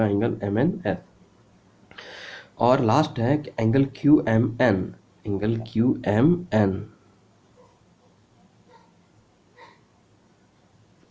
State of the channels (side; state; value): both; identical; correlation 1.00